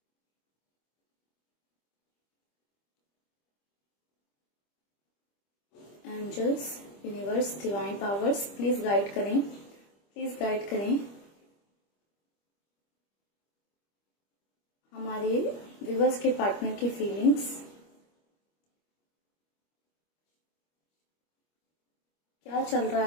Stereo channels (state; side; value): late; right; 25 ms